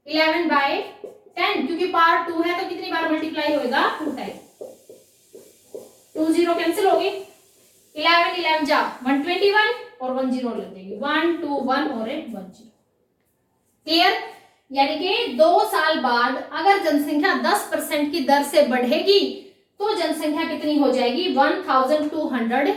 11/10, क्योंकि पावर 2 है तो कितनी बार मल्टीप्लाई होएगा 2 टाइम, 2 0 कैंसिल होगी, 11 11 जा 121 और 1 0 लग जाएगी, 1 2 1 और 1 0, क्लियर। यानी कि 2 साल बाद अगर जनसंख्या 10% की दर से बढ़ेगी तो जनसंख्या कितनी हो जाएगी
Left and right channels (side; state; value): both; identical; correlation 1.00